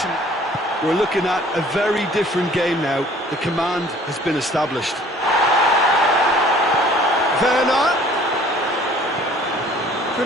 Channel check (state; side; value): normal; both; correlation 0.53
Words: We're looking at a very different game now. The command has been established. Werner. Good